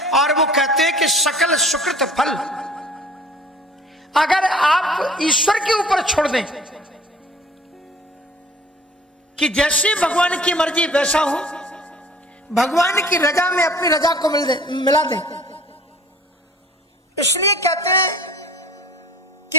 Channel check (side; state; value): both; normal; correlation 0.50